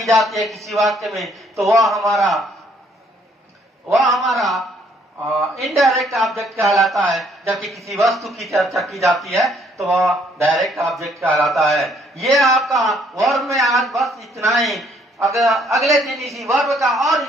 जाती है किसी वाक्य में तो वह हमारा इनडायरेक्ट ऑब्जेक्ट कहलाता है, जबकि किसी वस्तु की चर्चा की जाती है तो वह डायरेक्ट ऑब्जेक्ट कहलाता है। ये आपका वर्ब में आज बस इतना ही। अगर अगले दिन इसी वर्ब का और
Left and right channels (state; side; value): normal; both; correlation 0.66